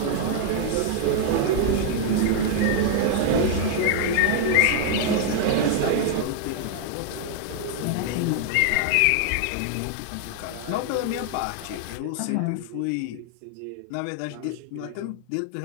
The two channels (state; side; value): different; both; correlation 0.00